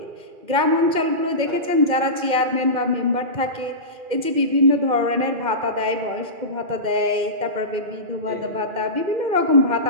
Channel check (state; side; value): late; left; 2.1 ms